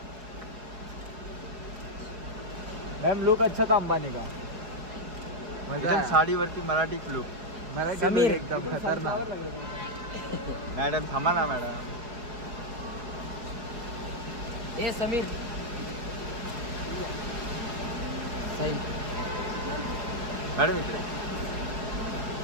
मैम लुक अच्छा था अंबानी का। एकदम साडीवरती मराठी लुक. समीर एकदम खतरनाक। मॅडम थांबा ना मॅडम. ए समीर साई मॅडम इकडे.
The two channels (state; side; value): late; left; 4.8 ms